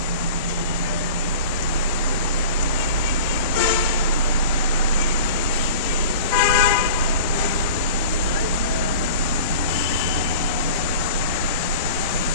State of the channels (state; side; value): inverted; both; correlation -0.40